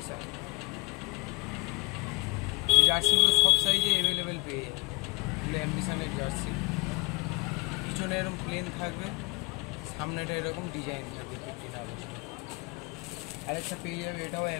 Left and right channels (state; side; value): quieter; right; 23.6 dB